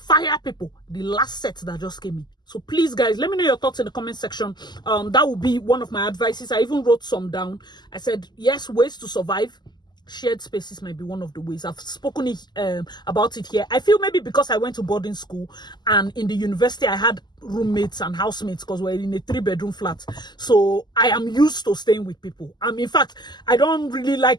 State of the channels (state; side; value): late; right; 0.21 ms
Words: people, the last set that just came in. So please, guys, let me know your thoughts in the comment section. That would be one of my advices. I even wrote some down. I said, yes, ways to survive. Shared spaces might be one of the ways. I've spoken about it here. I feel maybe because I went to boarding school and in the university I had roommates and housemates because we're in a 3-bedroom flat. So I am used to staying with people. In fact, I don't really